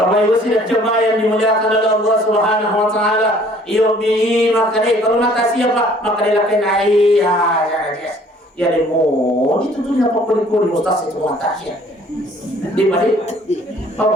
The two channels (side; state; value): both; normal; correlation 0.56